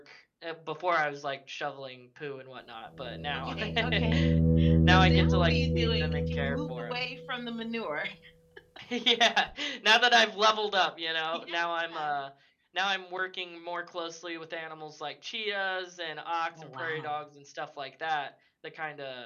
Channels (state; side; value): identical; both; correlation 1.00